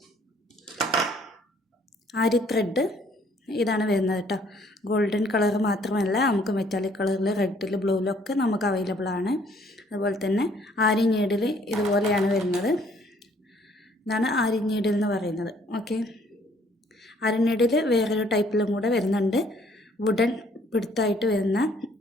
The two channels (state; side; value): normal; both; correlation 0.62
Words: ആരി ത്രെഡ് ഇതാണ് വരുന്നത് കേട്ടോ. ഗോൾഡൻ കളർ മാത്രമല്ല, നമുക്ക് മെറ്റാലിക് കളറിൽ, റെഡിൽ, ബ്ലൂവിലൊക്കെ നമുക്ക് അവൈലബിൾ ആണ്. അതുപോലെ തന്നെ ആരി നീഡിൽ ഇതുപോലെയാണ് വരുന്നത്. ഇതാണ് ആരി നീഡിൽ എന്ന് പറയുന്നത്. ഓക്കെ, ആരി നീഡിൽ വേറൊരു ടൈപ്പിലും കൂടെ വരുന്നുണ്ട്. വുഡൻ പിടുത്തായിട്ട്